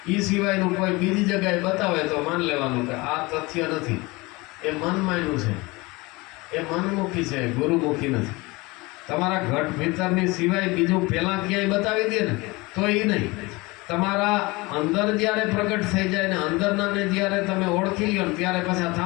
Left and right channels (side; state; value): right; quieter; 23.6 dB